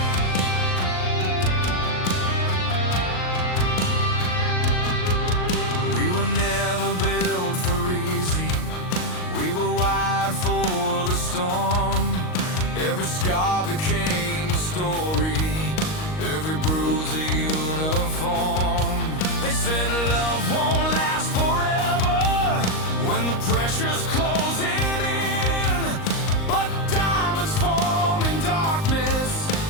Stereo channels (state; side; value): late; right; 38 ms